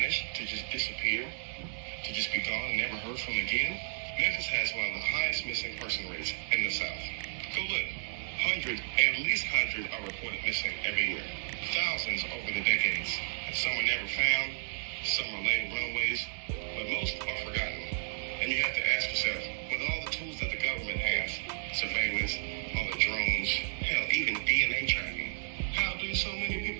to just disappear, to just be gone and never heard from again? Memphis has one of the highest missing person rates in the South. Go look. At least 100 are reported missing every year. Thousands over the decades. Some are never found, some are laid runaways, but most are forgotten. And you have to ask yourself, with all the tools that the government has, surveillance, all the drones, hell, even DNA tracking, how do so many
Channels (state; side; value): silent; left; 56 dB below the other